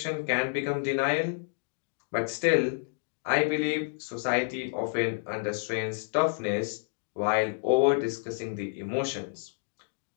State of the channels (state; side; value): silent; right; digital silence